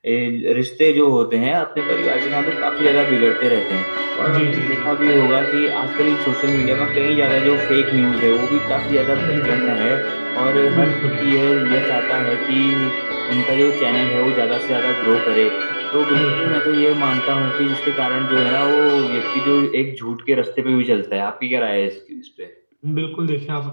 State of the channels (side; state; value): both; inverted; correlation -1.00